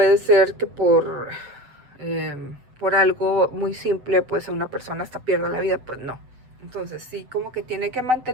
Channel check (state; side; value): late; left; 7.9 ms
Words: ser que por algo muy simple, pues una persona hasta pierda la vida, pues no. Entonces sí, como que tiene que